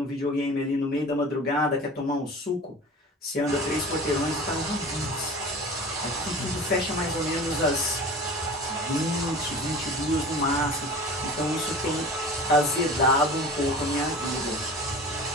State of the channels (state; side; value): normal; both; correlation 0.37